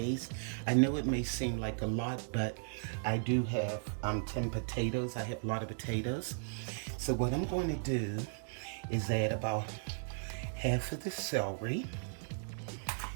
I know it may seem like a lot, but I do have 10 potatoes. I have a lot of potatoes. So what I'm going to do is add about half of the celery,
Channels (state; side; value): silent; left; digital silence